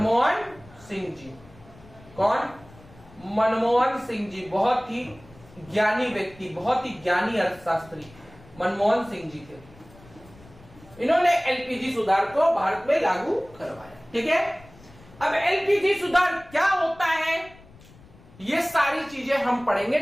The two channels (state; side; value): noise; left; rumble, 23 dB below the sound